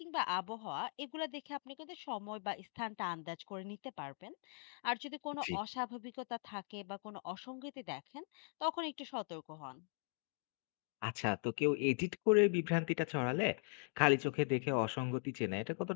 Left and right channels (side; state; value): right; silent; 51 dB below the other